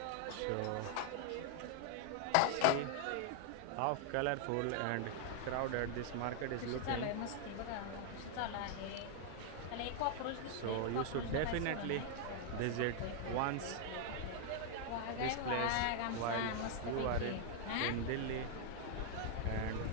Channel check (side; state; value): both; different; correlation 0.00